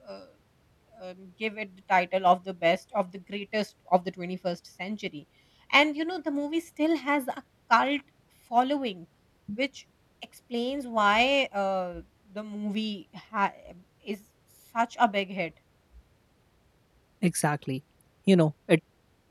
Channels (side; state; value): both; identical; correlation 1.00